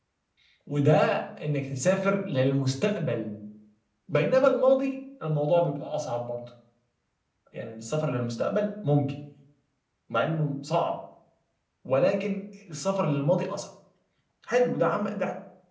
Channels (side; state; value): both; identical; correlation 1.00